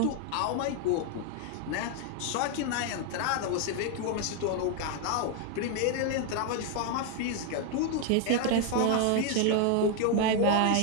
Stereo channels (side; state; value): both; different; correlation 0.00